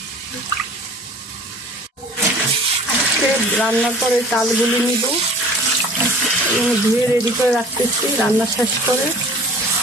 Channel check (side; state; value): both; normal; correlation 0.45